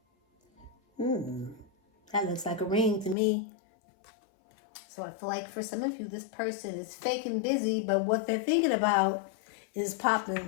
That looks like a ring to me. So I feel like for some of you, this person is fake and busy, but what they're thinking about is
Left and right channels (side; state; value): right; drops out; at 3.2 s